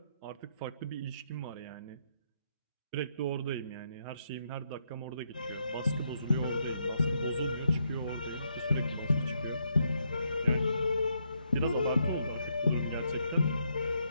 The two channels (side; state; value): both; inverted; correlation -0.77